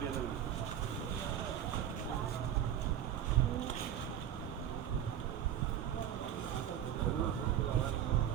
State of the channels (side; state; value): left; quieter; 10.3 dB